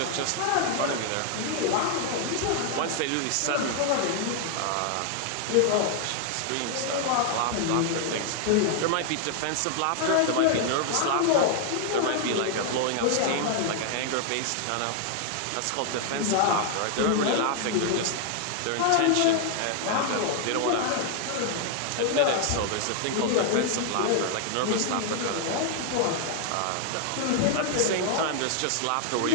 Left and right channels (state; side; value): different; both; correlation 0.00